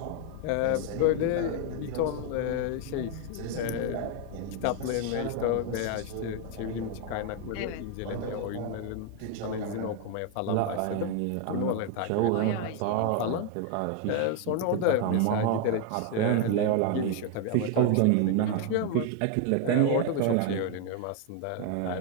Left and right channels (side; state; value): both; different; correlation 0.01